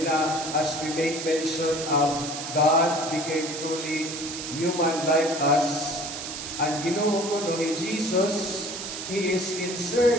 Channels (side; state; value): right; noise; hiss, 7 dB below the sound